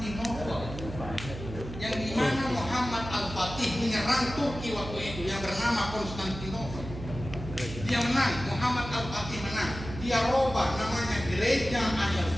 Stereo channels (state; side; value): noise; right; hum, 10 dB below the sound